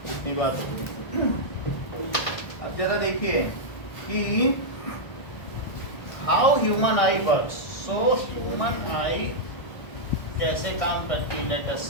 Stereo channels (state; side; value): late; right; 1.6 ms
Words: इतनी बात होगी. अब जरा देखिए कि how human I works. So human आई कैसे काम करती है, let